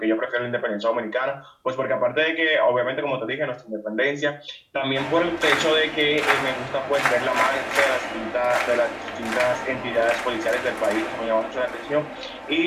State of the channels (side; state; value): both; identical; correlation 1.00